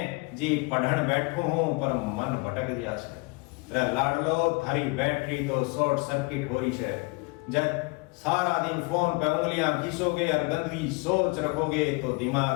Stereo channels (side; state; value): right; quieter; 28.4 dB